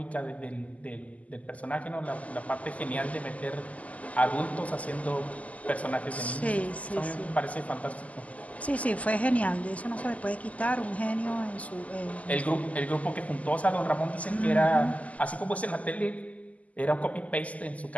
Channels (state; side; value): late; right; 0.072 ms